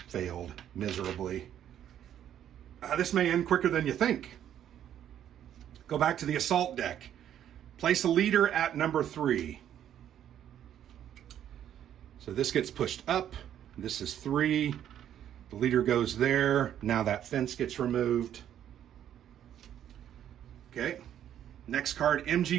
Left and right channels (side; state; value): left; quieter; 10.4 dB